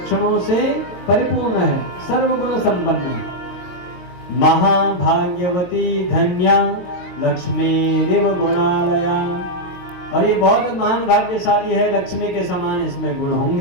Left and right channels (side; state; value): right; late; 22 ms